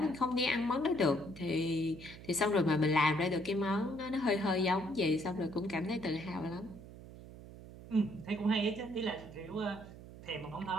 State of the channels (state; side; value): noise; right; hum, 16 dB below the sound